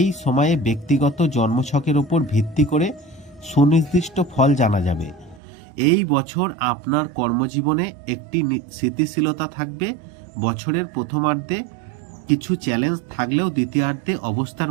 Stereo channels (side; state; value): left; drops out; at 5.4 s